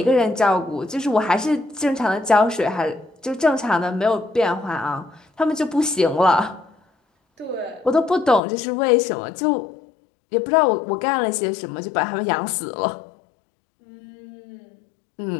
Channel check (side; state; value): right; drops out; at 8.4 s